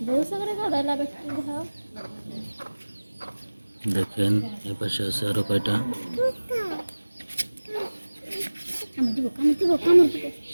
দেখেন এ পাশে আছে আরো কয়টা।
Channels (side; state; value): both; inverted; correlation -1.00